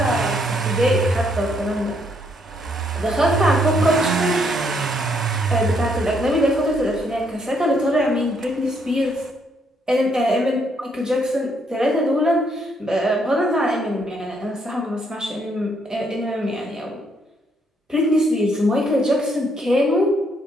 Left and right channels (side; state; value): both; normal; correlation 0.72